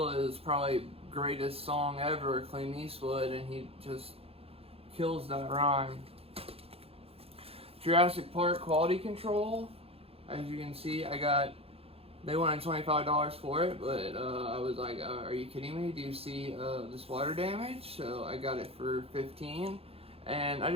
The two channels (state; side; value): late; left; 0.28 ms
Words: probably greatest song ever, Clint Eastwood, and he just kills that rhyme. Jurassic Park Quality Control, as you can see, they wanted $25 for it, but I was like, are you kidding me? Do you see this water damage? So I got it for $15, and I